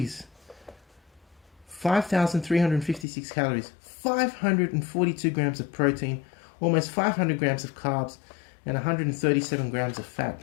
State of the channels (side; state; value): right; drops out; at 3.1 s